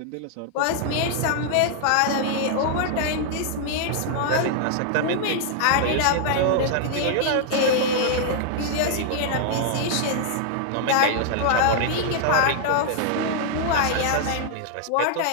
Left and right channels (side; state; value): both; different; correlation 0.00